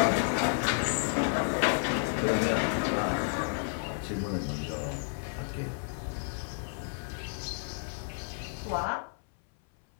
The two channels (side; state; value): right; silent; 57 dB below the other